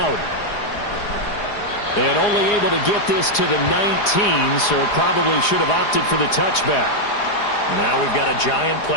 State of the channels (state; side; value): late; right; 4.8 ms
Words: And only able to get this to the 19, so probably should have opted for the touchback. Now we've got a Giant